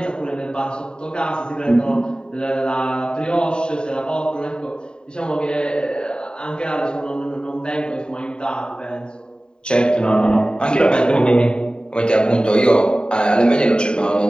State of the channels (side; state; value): right; late; 0.048 ms